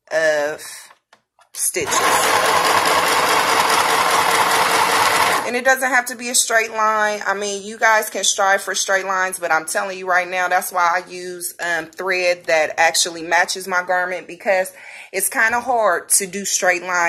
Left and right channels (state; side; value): identical; both; correlation 1.00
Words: of stitches. And it doesn't have to be a straight line. I mean, you guys can strive for straight lines, but I'm telling you right now, that's why I use thread that actually matches my garment, because it's kind of hard to do straight